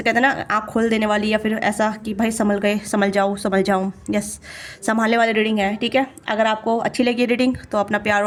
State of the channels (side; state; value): both; identical; correlation 1.00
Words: कहते हैं ना आँख खोल देने वाली, या फिर ऐसा कि भाई संभल गए, संभल जाऊँ, यस, संभालने वाली रीडिंग है, ठीक है। अगर आपको अच्छी लगी रीडिंग तो अपना प्यार